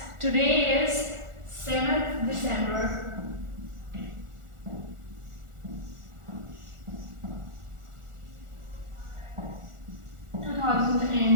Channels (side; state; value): left; late; 1.4 ms